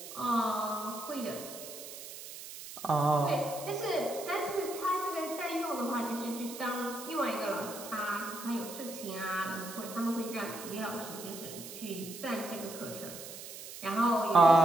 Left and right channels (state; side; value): noise; right; hiss, 12 dB below the sound